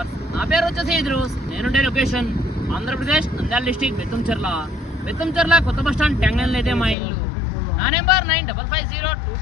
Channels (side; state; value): right; drops out; at 7.0 s